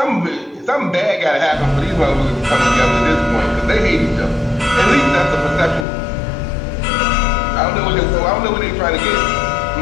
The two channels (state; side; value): drops out; right; at 5.9 s